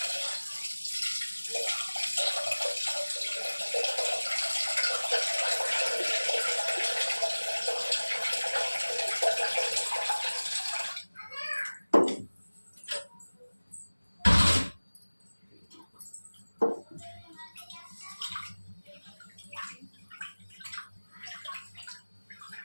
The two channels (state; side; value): inverted; both; correlation -1.00